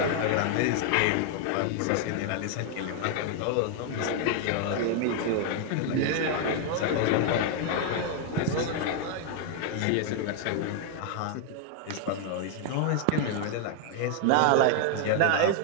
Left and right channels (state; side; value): different; both; correlation 0.00